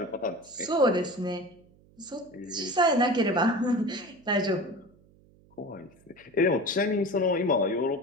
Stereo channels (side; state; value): right; noise; hum, 29 dB below the sound